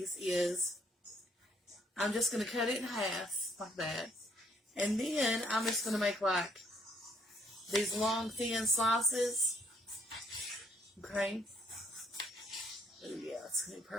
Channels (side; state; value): both; normal; correlation 0.68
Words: is I'm just going to cut it in half, like that. And then I'm just going to make like these long, thin slices. Okay. Oh, yeah, it's going to be